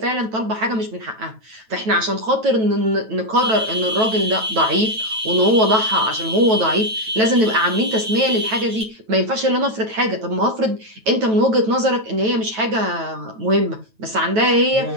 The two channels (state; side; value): late; left; 9.2 ms